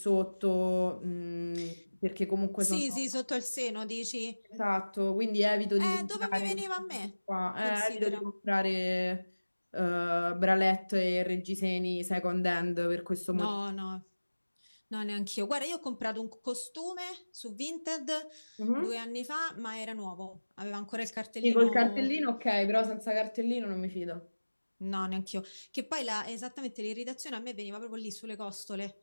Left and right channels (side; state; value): both; inverted; correlation -1.00